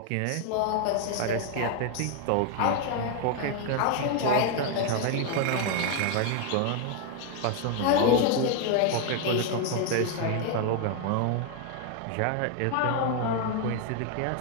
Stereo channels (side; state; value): both; different; correlation 0.00